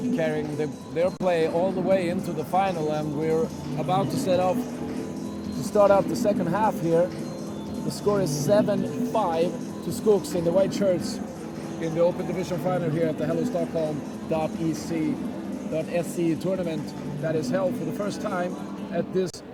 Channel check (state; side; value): identical; both; correlation 1.00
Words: carrying their play all the way into the final, and we're about to start out the second half here. The score is 7-5 to Skooks in the white shirts in the Open Division final here at the Hello Stockholm.se tournament that is held for the first time at this